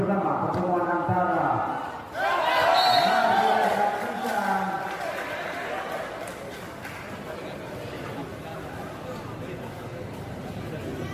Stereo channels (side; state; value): both; identical; correlation 1.00